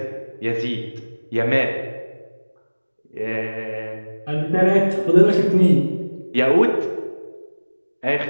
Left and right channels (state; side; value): inverted; both; correlation -1.00